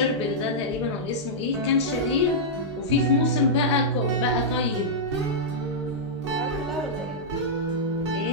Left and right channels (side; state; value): both; normal; correlation -0.10